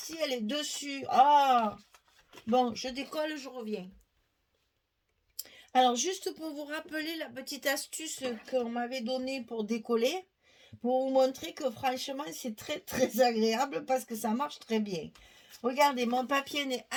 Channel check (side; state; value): both; identical; correlation 1.00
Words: elle est dessus. Ah, bon, je décolle, je reviens. Alors, juste pour vous rappeler la petite astuce qu'on m'avait donnée pour décoller, pour vous montrer que franchement, c'est très, très agréable parce que ça marche très bien. Regardez, mon papier n'est